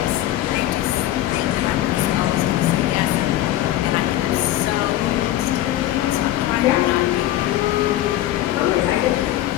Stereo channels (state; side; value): quieter; right; 14.2 dB